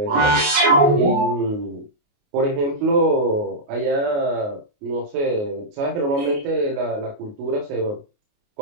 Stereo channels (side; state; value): left; late; 29 ms